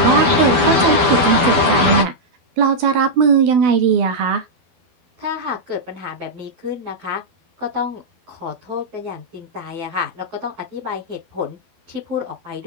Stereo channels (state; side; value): late; left; 12 ms